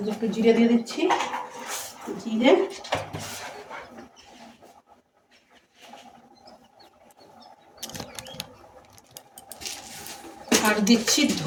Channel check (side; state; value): both; identical; correlation 1.00